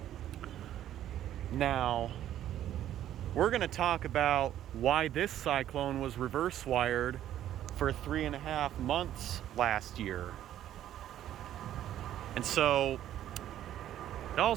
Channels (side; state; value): left; quieter; 11.8 dB